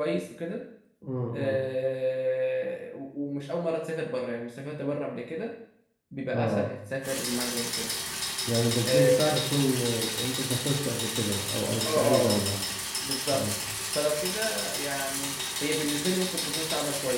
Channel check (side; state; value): both; identical; correlation 1.00